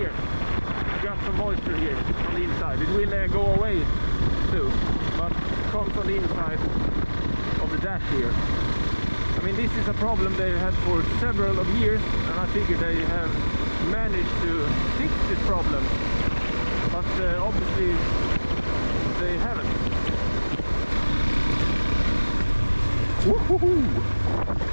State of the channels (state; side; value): inverted; both; correlation -1.00